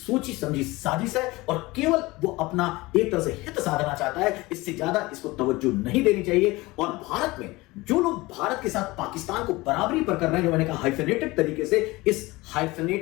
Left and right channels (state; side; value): quieter; right; 21.3 dB